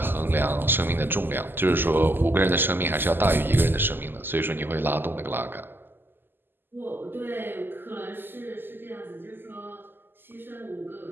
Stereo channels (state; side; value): late; left; 0.096 ms